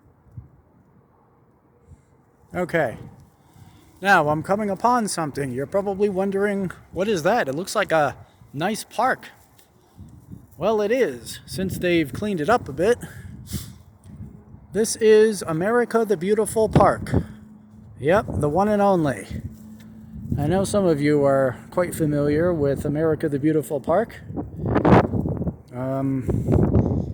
Okay, now I'm coming upon something. You're probably wondering, what is that? It looks like a nice park. Well, it is, since they've cleaned it up a bit. This is America the Beautiful Park. Yep, the one and only. I know some of you are quite familiar with America the Beautiful Park.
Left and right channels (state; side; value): identical; both; correlation 1.00